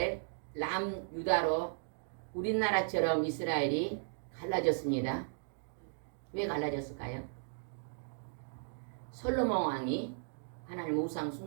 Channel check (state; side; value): silent; left; digital silence